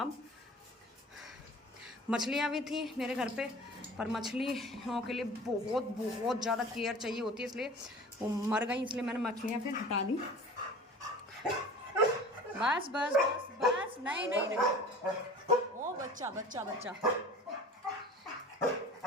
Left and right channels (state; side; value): normal; both; correlation 0.40